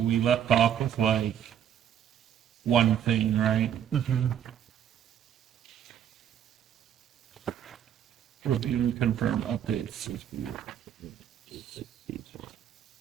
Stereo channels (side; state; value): left; quieter; 9.6 dB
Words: we left off with like one thing, right? Review and confirm updates.